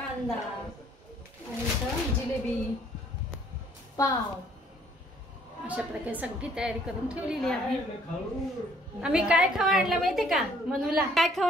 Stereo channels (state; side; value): normal; both; correlation 0.61